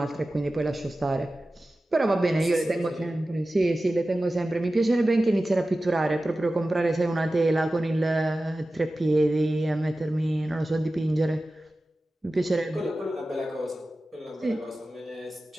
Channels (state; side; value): normal; both; correlation 0.95